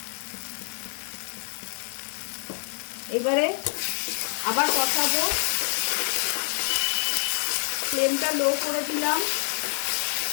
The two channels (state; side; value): silent; right; 60 dB below the other